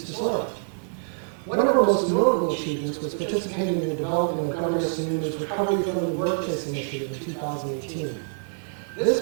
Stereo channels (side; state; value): left; silent; digital silence